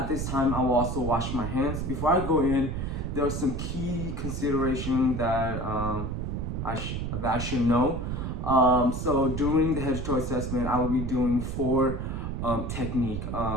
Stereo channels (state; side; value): noise; right; rumble, 3 dB below the sound